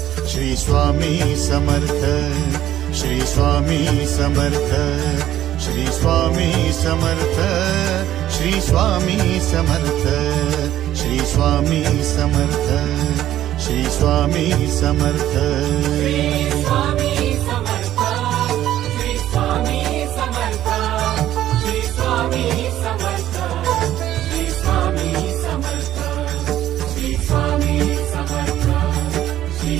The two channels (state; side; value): quieter; left; 12.7 dB